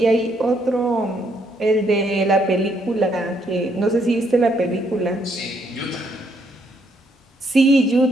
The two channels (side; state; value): both; normal; correlation 0.72